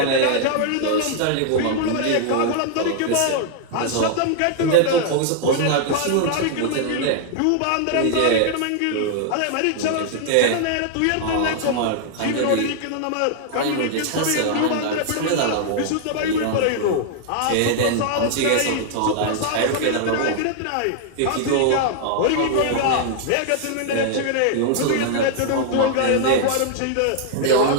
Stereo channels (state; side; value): different; both; correlation 0.00